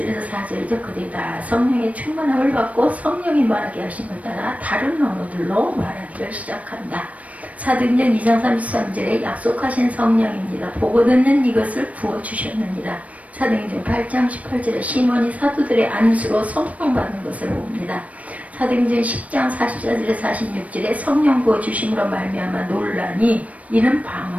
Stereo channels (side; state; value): left; late; 0.067 ms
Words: 4절이죠. 그들이 다 성령의 충만함을 받고 성령이 말하게 하심을 따라 다른 언어들로 말하기를 시작한다. 사도행전 2장 33절에 약속하신 성령입니다. 보고 듣는 이것을 부어주셨느니라. 사도행전 8장 18절에 시몬이 사도들의 안수로 성령 받는 것을 봅니다. 사도행전 10장 44절에 46절에 성령 부어주심으로 말미암아 놀라니 이는